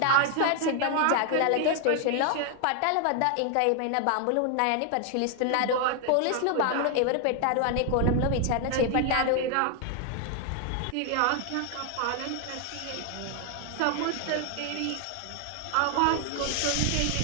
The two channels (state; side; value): different; both; correlation 0.00